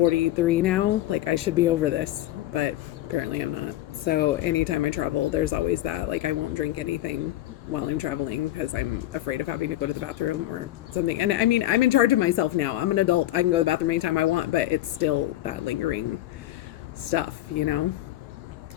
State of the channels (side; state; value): right; quieter; 14.8 dB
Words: now, like I should be over this, but apparently I'm not. So anytime I travel, there's always that, like I won't drink anything while I'm traveling because I'm afraid of having to go to the bathroom or something. And I mean, I'm in charge of myself now. I'm an adult. I can go to the bathroom anytime I want, but it's still that lingering stuff, you know?